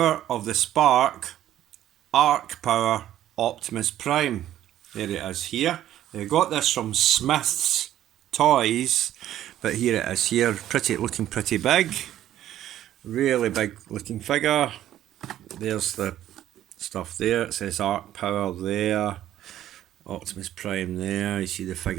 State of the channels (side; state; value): left; quieter; 12.4 dB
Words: of the Spark Arc Power Optimus Prime. There it is here. I got this from Smith's Toys, but here it is here, looking pretty big. Really big looking figure. There's the stuff there, it says Arc Power there. Optimus Prime there, you see the